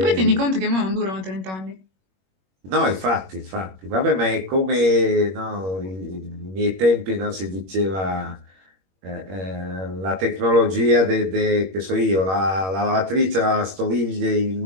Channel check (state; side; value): late; left; 21 ms